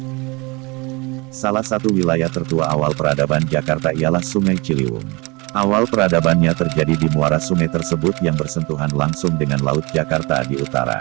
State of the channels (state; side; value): quieter; left; 26.3 dB